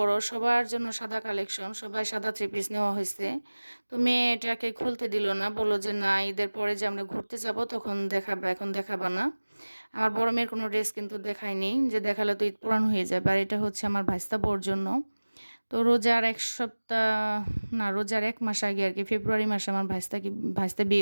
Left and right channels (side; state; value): both; inverted; correlation -1.00